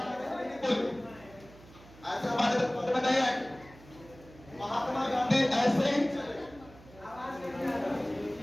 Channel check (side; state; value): right; noise; hum, 21 dB below the sound